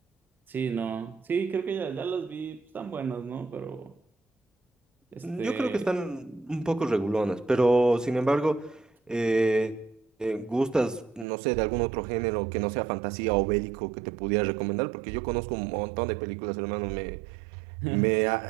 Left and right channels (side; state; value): left; drops out; at 11.2 s